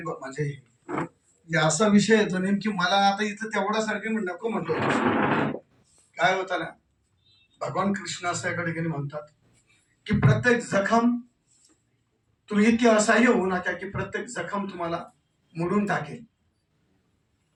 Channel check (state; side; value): identical; both; correlation 1.00